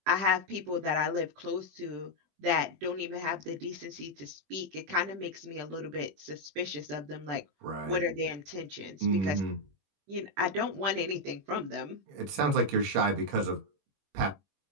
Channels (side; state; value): left; late; 21 ms